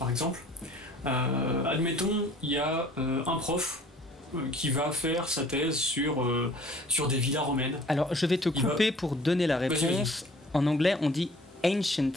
exemple. Admettons, il y a un prof qui va faire sa thèse sur des villas romaines. Alors, je vais te couper pour donner la réponse. En anglais, on dit Ancient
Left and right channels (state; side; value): normal; both; correlation 0.52